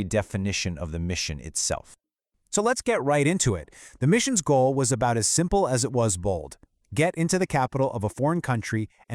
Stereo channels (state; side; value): identical; both; correlation 1.00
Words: definition of the mission itself. So let's get right into it. The mission's goal was about as simple as it was bold. Get into the capital of a foreign country